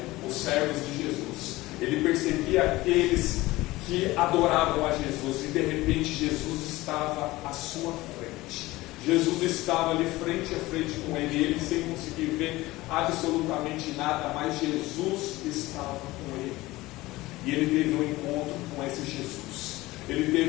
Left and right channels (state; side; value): quieter; right; 19.0 dB